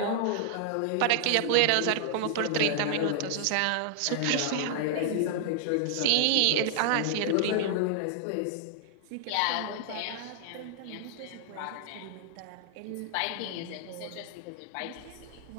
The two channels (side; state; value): both; different; correlation -0.01